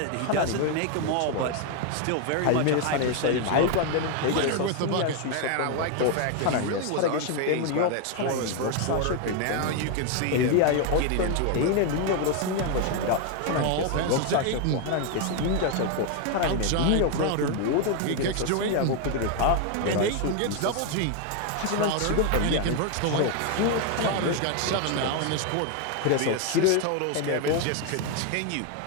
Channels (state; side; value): different; both; correlation 0.01